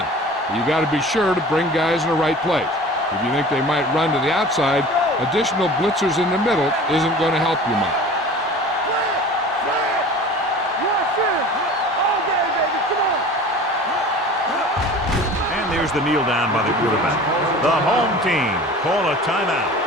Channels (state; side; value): normal; both; correlation 0.41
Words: You got to be sure to bring guys in the right place. If you think they might run to the outside, additional blitzers in the middle isn't going to help you much. There's the kneel down by the quarterback. The home team call a timeout.